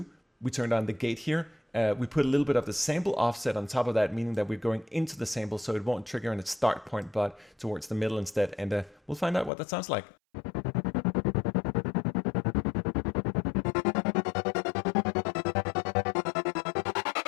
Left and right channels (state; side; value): drops out; right; at 9.5 s